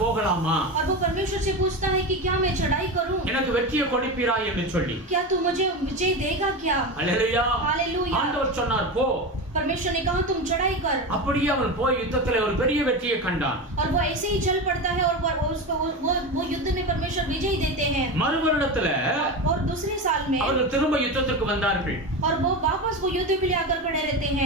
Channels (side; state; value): both; normal; correlation 0.21